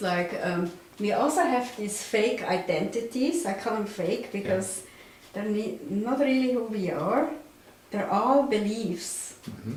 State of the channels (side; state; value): both; identical; correlation 1.00